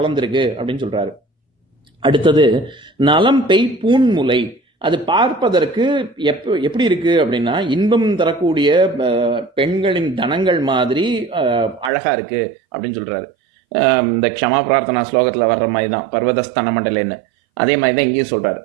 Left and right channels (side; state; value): left; drops out; at 11.9 s